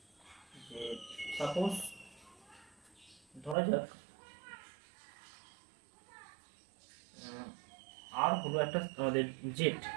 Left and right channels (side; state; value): left; drops out; at 3.6 s